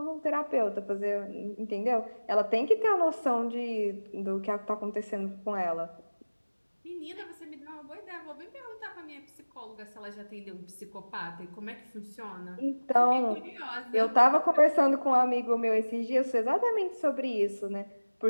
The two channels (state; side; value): inverted; both; correlation -1.00